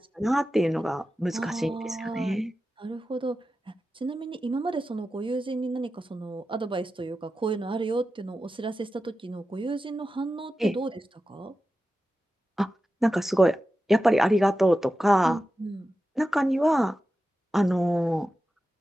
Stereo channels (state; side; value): normal; both; correlation 0.92